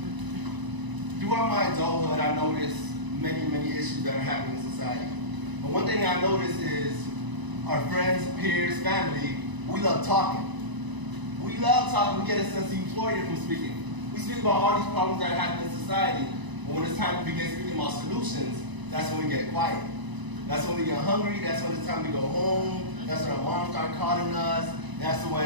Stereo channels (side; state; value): left; late; 1.0 ms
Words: throughout my adulthood, I noticed many issues that are happening in society. But one thing I noticed is our friends, peers, family, we love talking. We love talking. We get a sense of euphoria from speaking. We speak about all these problems that happen in society, but when it's time to begin speaking about solutions, that's when we get quiet. That's when we get hungry. That's when it's time to go home. That's when our moms start calling us. That's when